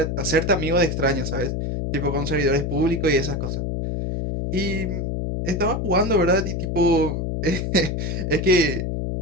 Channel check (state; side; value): noise; left; hum, 2 dB below the sound